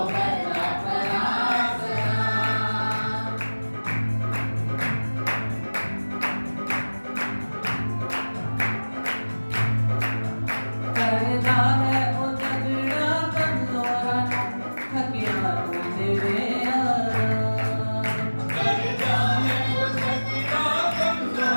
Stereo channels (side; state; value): both; inverted; correlation -1.00